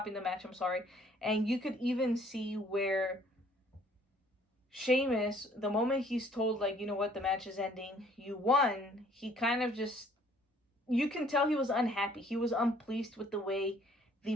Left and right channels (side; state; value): both; normal; correlation 0.59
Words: the match, and you could even see where Sheamus, the moment he's told, like, you know what, the match is ending, you won, he kind of just, you can tell he was unhappy, he was unpleased with the way the